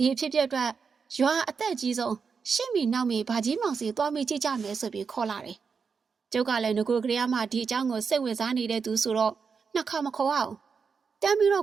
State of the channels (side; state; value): left; quieter; 5.6 dB